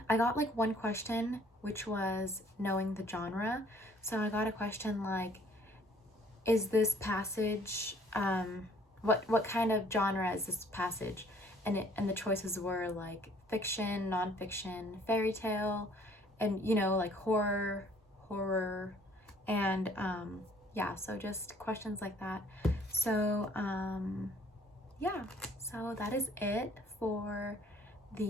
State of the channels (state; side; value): normal; both; correlation 0.58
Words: got like one question which was knowing the genre. So I got a question like, is this passage, what kind of genre is this passage? And the choices were like fiction, nonfiction, fairy tale, and like horror, and yeah, so just questions like that. So yeah, so that is it for